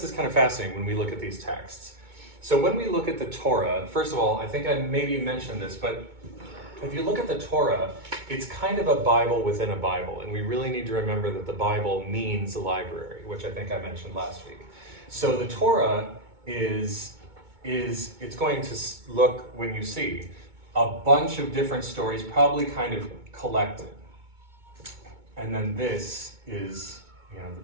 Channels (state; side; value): late; left; 2.2 ms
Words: is kind of fascinating when we look at these texts. So when we look at the Torah, first of all, I think I maybe mentioned this, but if you look at the Torah, it's kind of a Bible within a Bible, and we really need to remember that the Bible means a library, which I think I mentioned last week. So the Torah is it's going to look, when you see a bunch of different stories, probably kind of collected. And then this is,